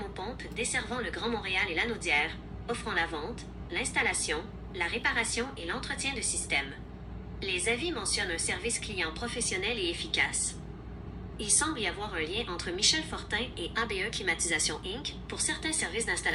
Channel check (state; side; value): identical; both; correlation 1.00